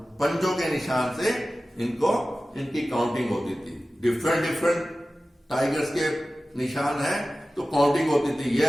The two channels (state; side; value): normal; both; correlation 0.95